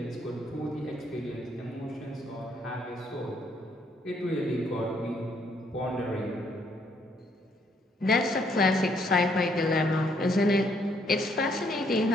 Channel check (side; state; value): both; normal; correlation 0.69